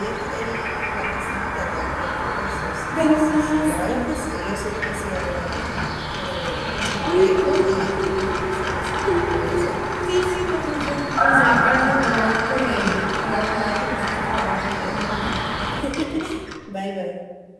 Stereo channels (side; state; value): both; identical; correlation 1.00